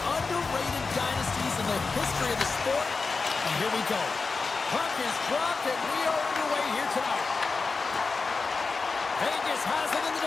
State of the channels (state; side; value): quieter; right; 4.3 dB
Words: dynasties in the history of the sport. And here we go. Puck is dropped, and we are underway here tonight. Vegas has it in the